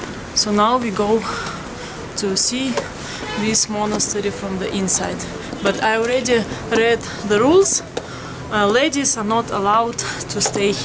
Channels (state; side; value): identical; both; correlation 1.00